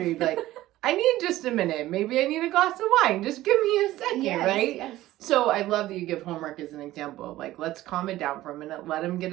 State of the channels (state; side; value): quieter; left; 15.7 dB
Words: You'd be like, I need just a minute. Maybe I need a glass of wine. Just give me a second, right? Yes. So I love that you give homework as an example of like, let's calm it down for a minute. Let them get